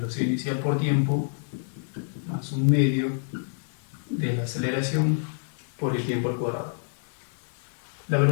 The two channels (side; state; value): right; silent; 60 dB below the other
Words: inicial por tiempo más un medio de la aceleración por el tiempo al cuadrado. La